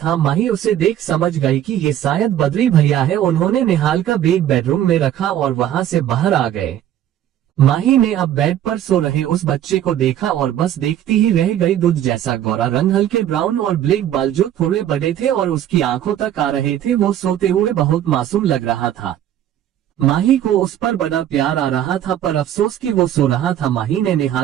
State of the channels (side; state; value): left; quieter; 11.2 dB